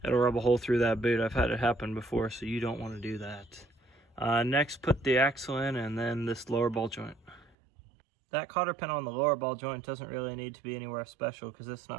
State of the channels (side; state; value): left; drops out; at 7.6 s